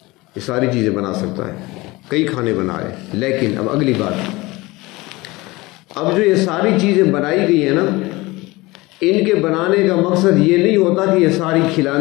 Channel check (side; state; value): right; quieter; 21.6 dB